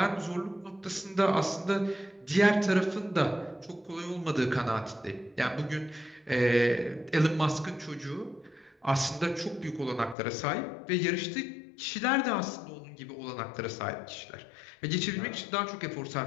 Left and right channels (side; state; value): right; drops out; at 10.2 s